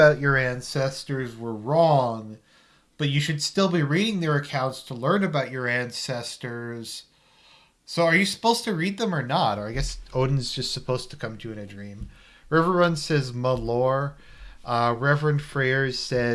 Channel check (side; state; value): both; identical; correlation 1.00